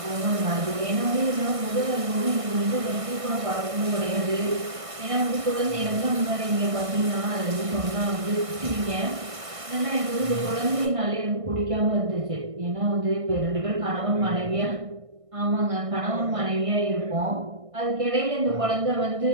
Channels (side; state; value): left; late; 1.6 ms